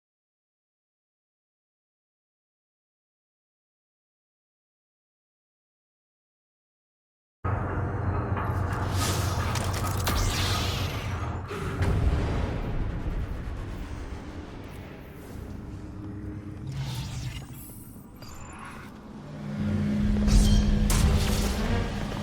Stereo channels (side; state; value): both; identical; correlation 1.00